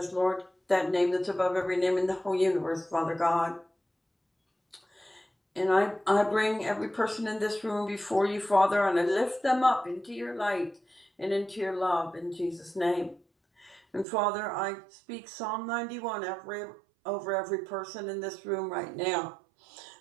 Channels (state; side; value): drops out; left; at 14.1 s